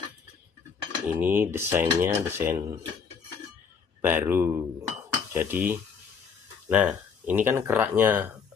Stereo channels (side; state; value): right; quieter; 6.2 dB